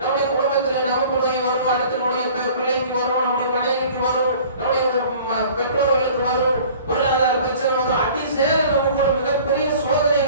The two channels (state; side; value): inverted; both; correlation -0.48